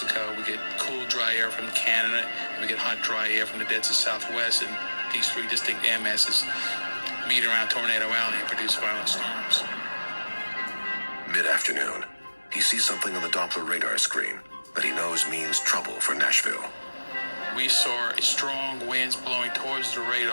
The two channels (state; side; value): inverted; both; correlation -1.00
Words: We get cool, dry air from Canada. And we get hot, dry air from the dead to southwest. And these three distinct air masses meet around Tornado Alley and produce violent storms. Mid-afternoon, he sees something on the Doppler radar screen that he knows means trouble for Nashville. We saw strong winds blowing towards the